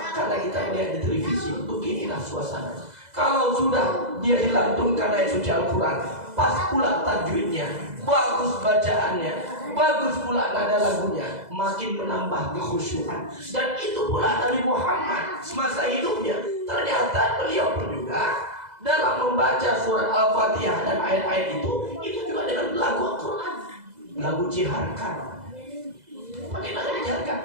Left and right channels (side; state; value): left; late; 2.0 ms